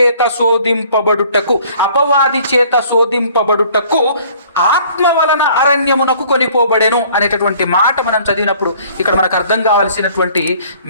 శోధింపబడుటకు ఆత్మ వలన అరణ్యమునకు కొనిపోబడెను అనేటటువంటి మాట మనం చదివినప్పుడు ఇక్కడ మనకు అర్థం కావాల్సినటువంటి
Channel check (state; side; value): inverted; both; correlation -0.55